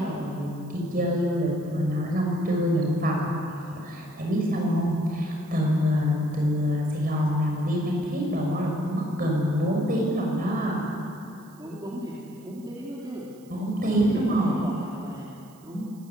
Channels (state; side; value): noise; right; hiss, 28 dB below the sound